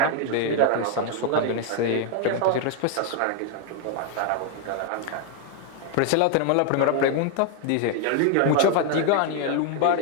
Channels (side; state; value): both; different; correlation 0.01